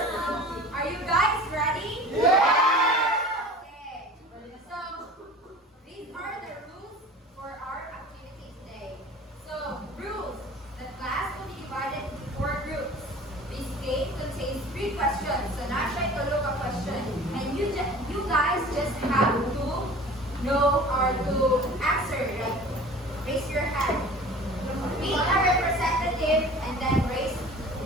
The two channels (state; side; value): normal; both; correlation 0.42